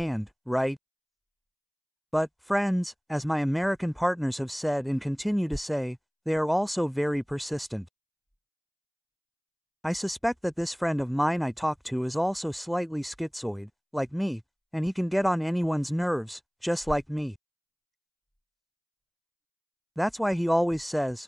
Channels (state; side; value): identical; both; correlation 1.00